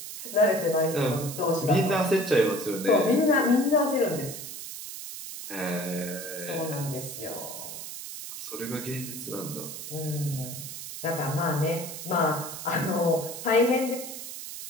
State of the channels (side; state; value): right; noise; hiss, 9 dB below the sound